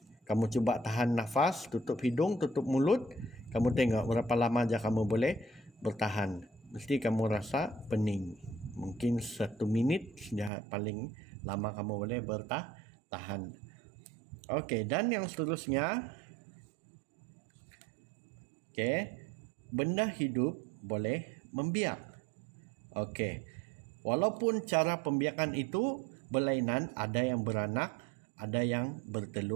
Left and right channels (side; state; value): left; drops out; at 10.5 s